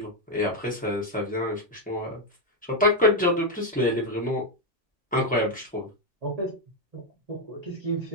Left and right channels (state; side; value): normal; both; correlation 0.05